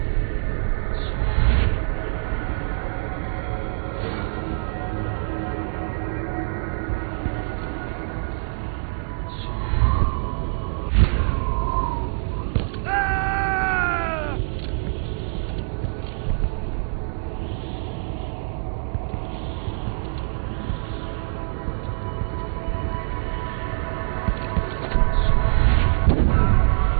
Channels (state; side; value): silent; left; digital silence